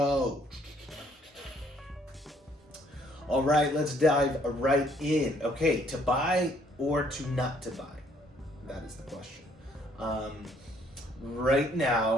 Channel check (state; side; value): normal; both; correlation 0.65